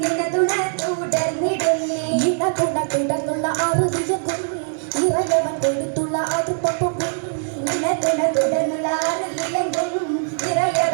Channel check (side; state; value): left; silent; 65 dB below the other